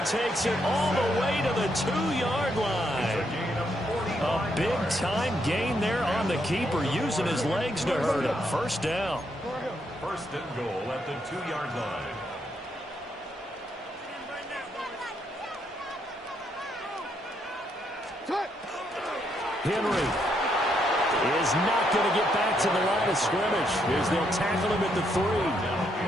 takes it all the way to the 2-yard line. A big-time gain there on the keeper, using his legs to hurt him. 1st down. 1st and goal at the 2-yard line. Henry is not going to get back to the line of scrimmage as they'll tackle him at the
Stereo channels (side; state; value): both; normal; correlation 0.76